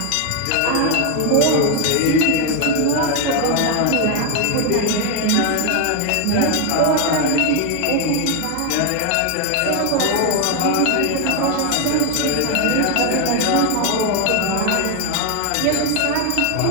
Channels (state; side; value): different; both; correlation 0.01